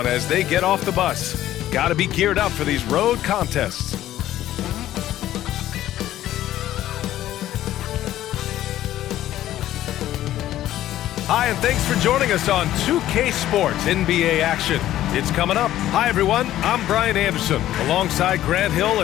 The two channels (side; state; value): right; quieter; 13.3 dB